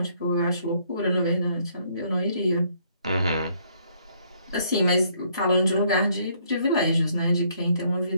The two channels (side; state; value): both; inverted; correlation -0.67